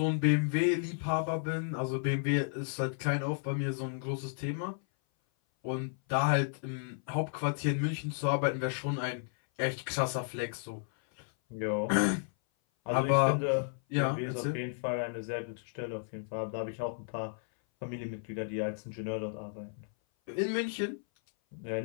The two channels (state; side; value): silent; right; 56 dB below the other